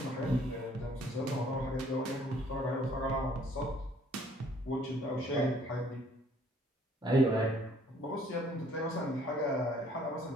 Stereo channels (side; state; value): both; normal; correlation 0.60